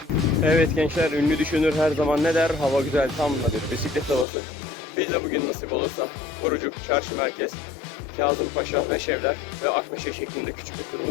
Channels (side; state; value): right; drops out; at 4.2 s